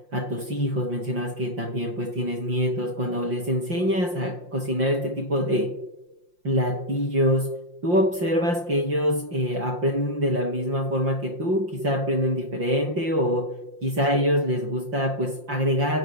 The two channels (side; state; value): left; late; 5.7 ms